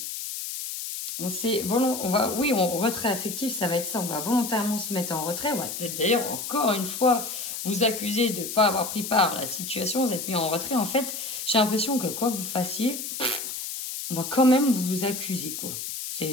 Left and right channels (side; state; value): left; noise; hiss, 6 dB below the sound